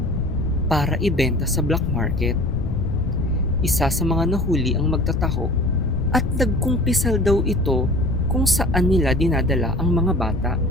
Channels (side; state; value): left; noise; rumble, 5 dB below the sound